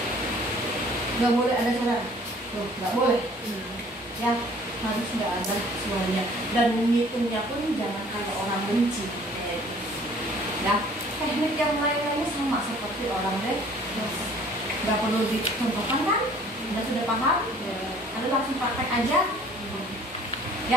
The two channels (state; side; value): normal; both; correlation 0.54